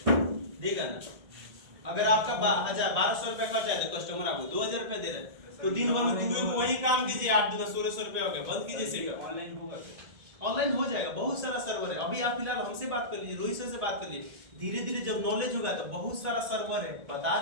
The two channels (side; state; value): left; late; 1.8 ms